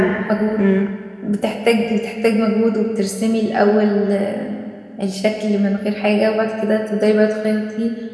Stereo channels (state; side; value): identical; both; correlation 1.00